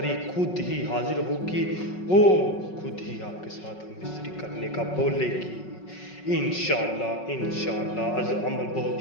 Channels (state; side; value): late; right; 5.4 ms